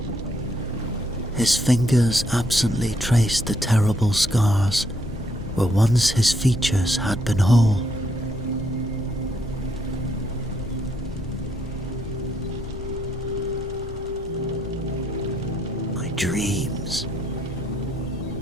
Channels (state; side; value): normal; both; correlation 0.73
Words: His fingers absently traced the terrible scars where once his features had been whole. "My dreams."